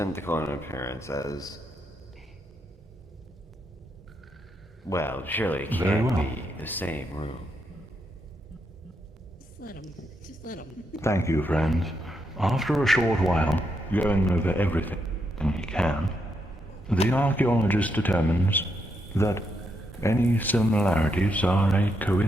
in appearance as... Well, surely it Very can't well. be the same room. Just let him. Thank you, friends. After a short while, going over everything he can, the archaeologist determines that any similarities are a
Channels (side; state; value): both; normal; correlation 0.80